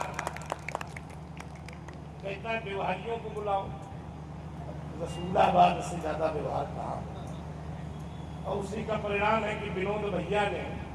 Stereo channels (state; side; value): identical; both; correlation 1.00